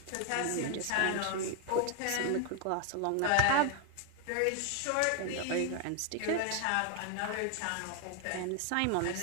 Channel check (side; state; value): both; different; correlation 0.00